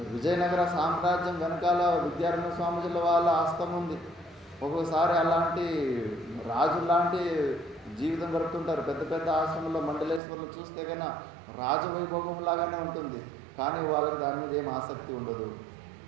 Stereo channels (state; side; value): drops out; left; at 10.2 s